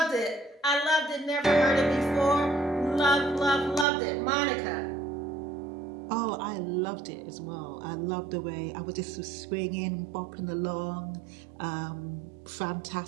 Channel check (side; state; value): left; drops out; at 3.9 s